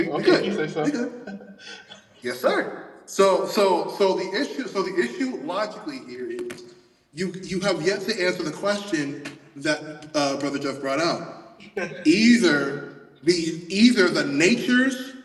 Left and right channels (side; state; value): both; identical; correlation 1.00